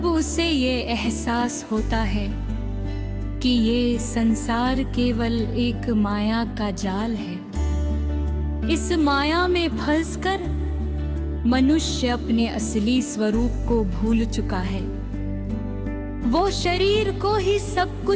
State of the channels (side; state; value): both; identical; correlation 1.00